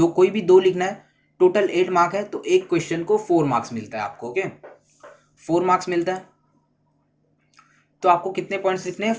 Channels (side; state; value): both; identical; correlation 1.00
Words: कोई भी 2 लिखना है, टोटल 8 मार्क है, तो एक क्वेश्चन को 4 मार्क्स मिलता है आपको। ओके, 4 मार्क्स मिलता है। तो आपको कितने पॉइंट्स लिखने हैं,